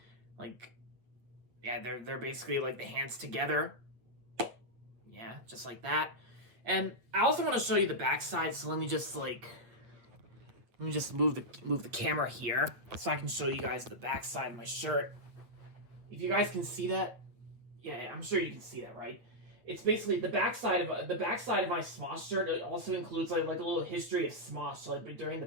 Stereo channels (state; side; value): late; left; 8.8 ms